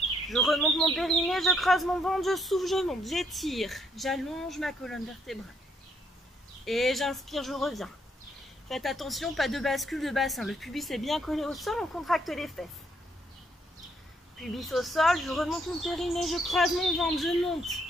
Je remonte mon périnée, je creuse mon ventre, je souffle, je monte, j'étire. J'allonge ma colonne vertébrale. Et j'inspire, je reviens. Faites attention, pas de bascule de bassin. Le pubis est bien collé au sol, on contracte les fesses. Pubis au sol, je remonte mon périnée, je creuse mon ventre, je monte,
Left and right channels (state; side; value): normal; both; correlation 0.71